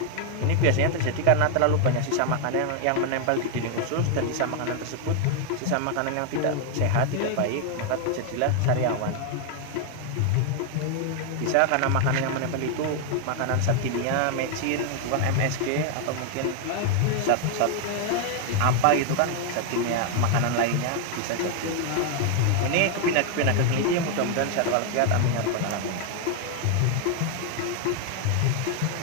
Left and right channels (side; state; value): both; different; correlation 0.00